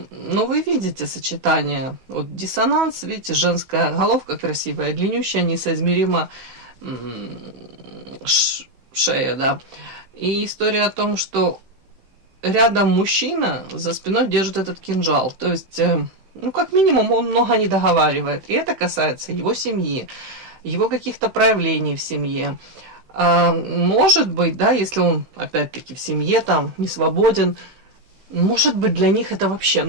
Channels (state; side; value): late; left; 16 ms